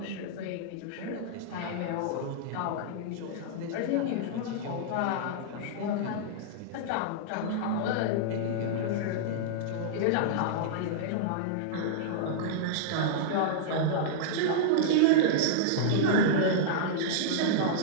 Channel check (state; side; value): different; both; correlation -0.02